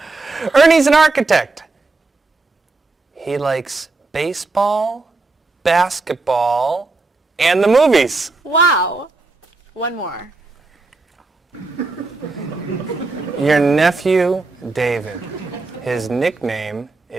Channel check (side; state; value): left; quieter; 3.6 dB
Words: Ernie's an architect. He likes baseball, basketball, and the movies. Wow. One more. Your nephew, David. His nickname